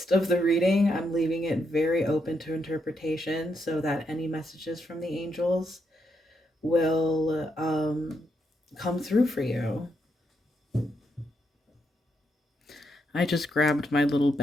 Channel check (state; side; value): normal; both; correlation 0.80